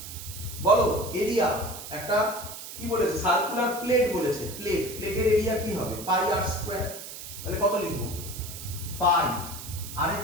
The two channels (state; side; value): noise; right; hiss, 11 dB below the sound